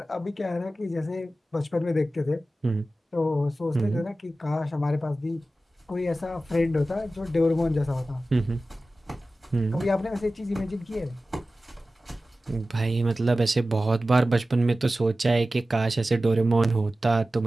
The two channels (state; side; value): normal; both; correlation 0.95